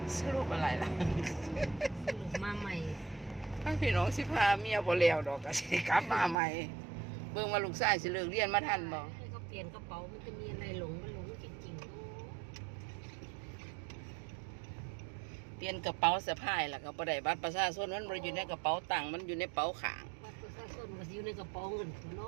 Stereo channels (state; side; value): drops out; left; at 6.4 s